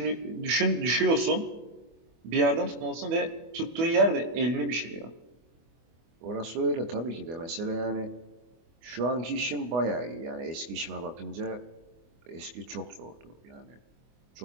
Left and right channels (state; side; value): late; left; 24 ms